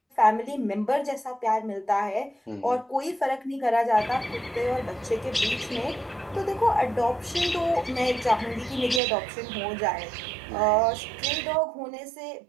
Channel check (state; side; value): drops out; left; at 9.0 s